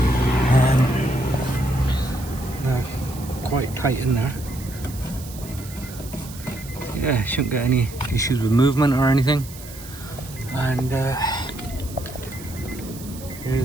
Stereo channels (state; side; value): noise; right; hiss, 16 dB below the sound